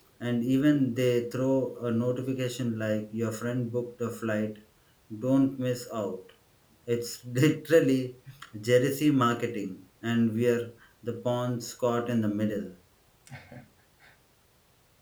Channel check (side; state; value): both; identical; correlation 1.00